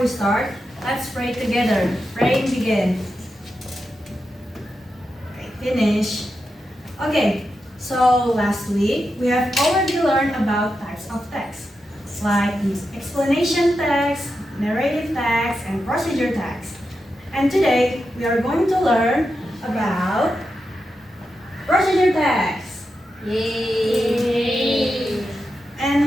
start, let's pray together. Praying begin. Okay, finish. Okay, so last week we have already learned about types of text, like explanation text, narrative text, and procedure text. And today we are going to learn about procedure text. Yay.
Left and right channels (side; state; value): both; normal; correlation 0.88